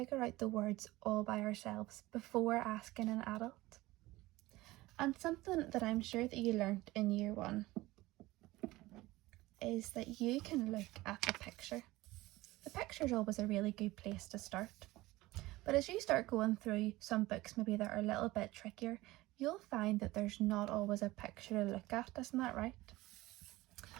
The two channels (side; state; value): left; quieter; 18.9 dB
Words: out the words all by ourselves before asking an adult. And something that I'm sure that you learnt in year 1 is that you can look at the picture. The picture is always a really good place to start. But as you start going through some books maybe that are a little bit trickier, you'll find that there's not always a picture to look at, isn't that right?